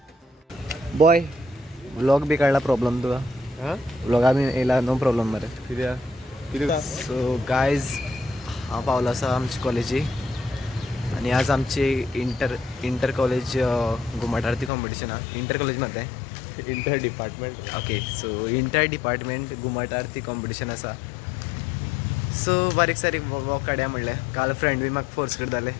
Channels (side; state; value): right; drops out; at 14.7 s